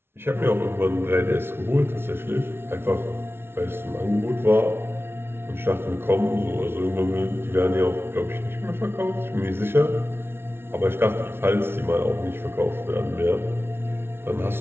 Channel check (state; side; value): late; left; 0.12 ms